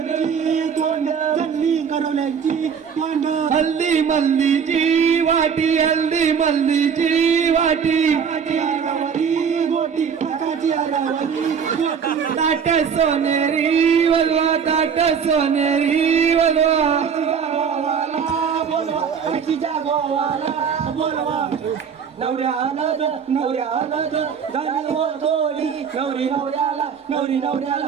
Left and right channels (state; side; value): quieter; left; 6.9 dB